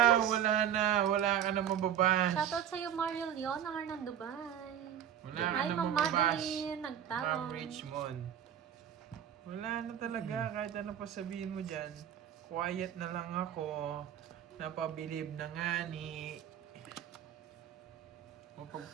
na, wala ka na mababash. Shoutout sa'yo, Mario Leon, ng Arnan Dubai. Wala ka Hi, na Ma'am mababash. Madeline, Ma'am nagtawag. Richmond. Wala na talaga, kahit ano pa sabihin mo dyan. Quiet na lang ako. Napabilib na nga ni...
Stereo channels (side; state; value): left; quieter; 9.8 dB